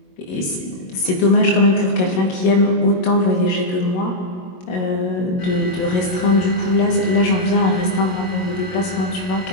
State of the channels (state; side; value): late; right; 22 ms